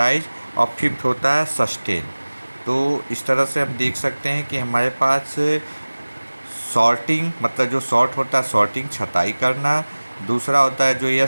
और फिफ्थ होता है सस्टेन। तो इस तरह से हम देख सकते हैं कि हमारे पास सॉर्टिंग मतलब जो सॉर्ट होता है सॉर्टिंग छँटाई करना, दूसरा होता है जो यह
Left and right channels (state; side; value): inverted; both; correlation -1.00